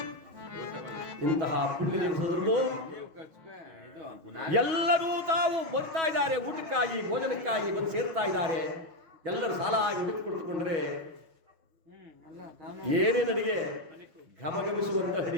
ಇಂತಹ ಪುಣ್ಯ ದಿವಸದಲ್ಲೂ ಎಲ್ಲರೂ ತಾವು ಬರ್ತಾ ಇದ್ದಾರೆ, ಊಟಕ್ಕಾಗಿ ಭೋಜನಕ್ಕಾಗಿ ಬಂದು ಸೇರ್ತಾ ಇದ್ದಾರೆ. ಎಲ್ಲರೂ ಸಾಲ ಆಗಿ ಹುಡುಕಿಕೊಟ್ಟುಕೊಂಡ್ರೆ ಏನೇನು ಅಡಿಗೆ, ಘಮಘಮಿಸುವಂತ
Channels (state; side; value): late; left; 6.2 ms